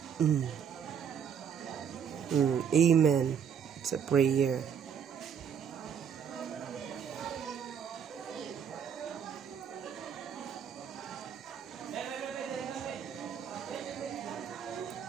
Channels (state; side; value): quieter; left; 7.8 dB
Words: Amen. It's a prayer.